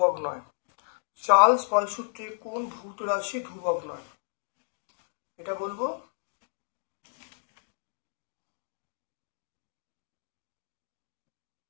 নয়? চার্লস বয়েল সূত্রে কোন ভৌত রাশি ধ্রুবক নয়? এটা বলবো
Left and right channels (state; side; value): silent; right; digital silence